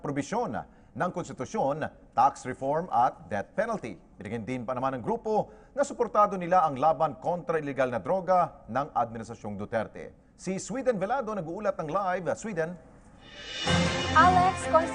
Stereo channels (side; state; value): both; identical; correlation 1.00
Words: ng konstitusyon, tax reform at death penalty. Binigyan din pa naman ng grupo na suportado nila ang laban kontra ilegal na droga ng Administrasyong Duterte. Si Sweden Velado nag-uulat ng live. Sweden. Alex,